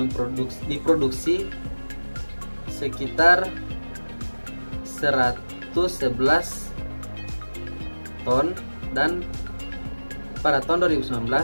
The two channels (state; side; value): inverted; both; correlation -1.00